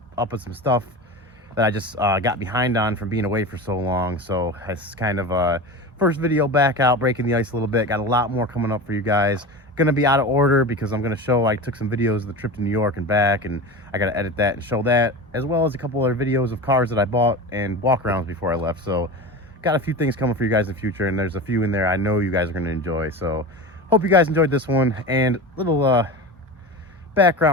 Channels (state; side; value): normal; both; correlation 0.28